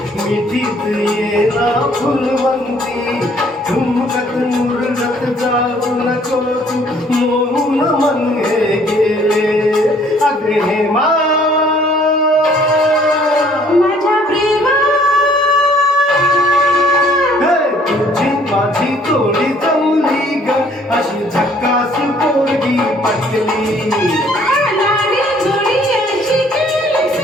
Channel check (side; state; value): both; normal; correlation 0.60